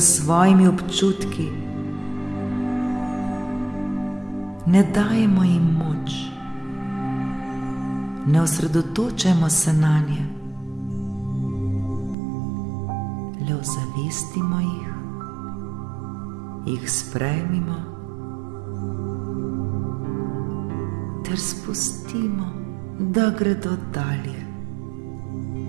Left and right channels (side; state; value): left; drops out; at 12.2 s